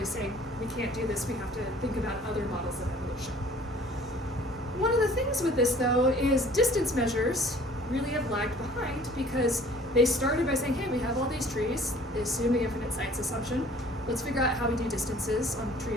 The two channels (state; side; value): normal; both; correlation 0.52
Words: saying we can't do this, we have to think about other models of evolution. One of the things with this, though, is distance measures really have lagged behind because they started by saying, hey, we have all these trees, they assume the infinite sites assumption, let's figure out how we do distances on